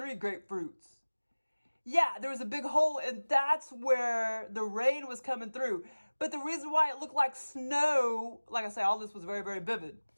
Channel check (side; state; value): both; inverted; correlation -1.00